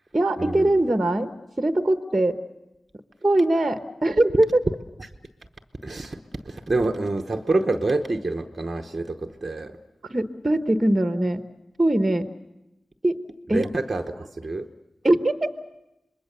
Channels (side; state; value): both; normal; correlation 0.95